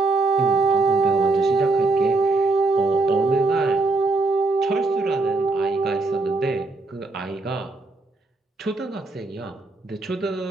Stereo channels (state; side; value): quieter; left; 3.5 dB